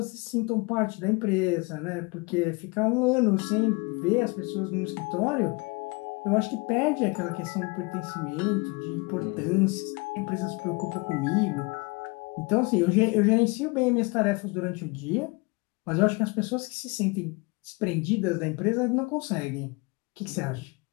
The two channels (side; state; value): right; quieter; 27.9 dB